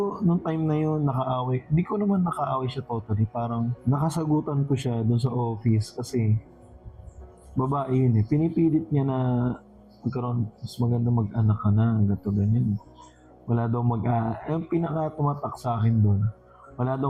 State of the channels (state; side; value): identical; both; correlation 1.00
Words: nung time na yun, nakaaway. Hindi ko naman nakaaway siya totally. Parang nakasagutan ko siya doon sa office kasi babae yun eh. Pinipilit niya na magkaroon, mas maganda mag-anak ka na, gato ganyan. Wala daw yung pinaka tumatak sa akin doon, wala